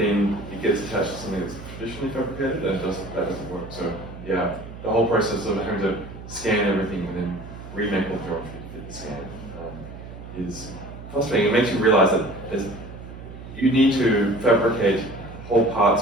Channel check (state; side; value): noise; right; hum, 13 dB below the sound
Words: it gets attached to something that's traditionally fabricated, and that doesn't work. So yeah, the whole process of having to scan everything and then remake all the geometry to fit the scan is frustrating. It makes you realize that you need to fabricate whole